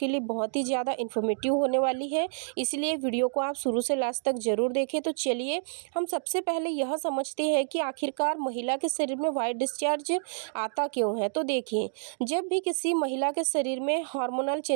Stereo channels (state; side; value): silent; left; digital silence